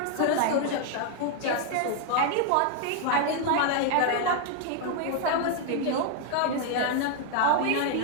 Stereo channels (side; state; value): both; different; correlation 0.00